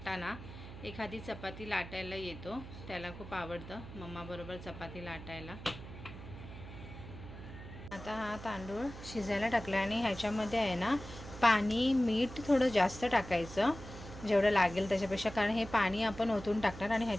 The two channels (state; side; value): noise; right; hum, 13 dB below the sound